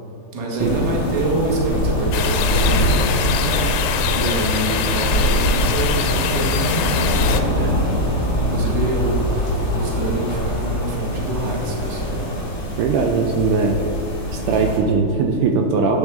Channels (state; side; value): late; right; 3.3 ms